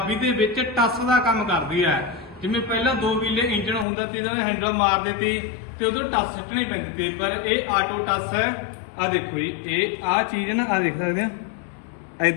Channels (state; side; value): drops out; right; at 3.9 s